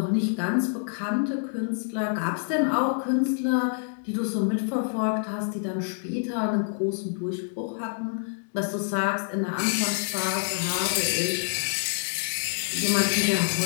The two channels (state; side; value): silent; right; 60 dB below the other